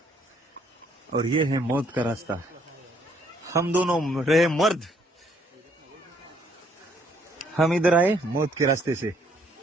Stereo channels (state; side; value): normal; both; correlation 0.67